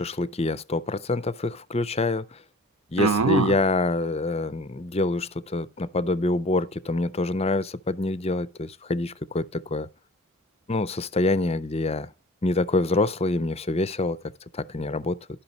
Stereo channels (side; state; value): both; normal; correlation 0.46